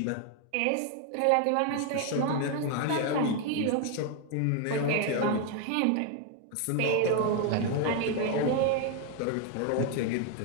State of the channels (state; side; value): different; both; correlation 0.01